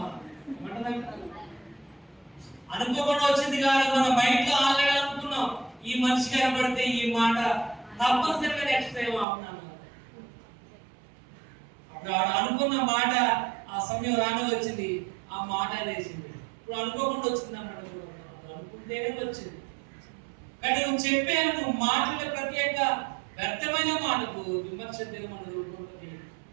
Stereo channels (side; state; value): left; drops out; at 9.2 s